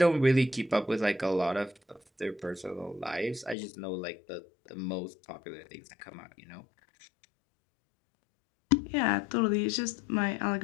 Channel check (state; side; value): drops out; right; at 3.6 s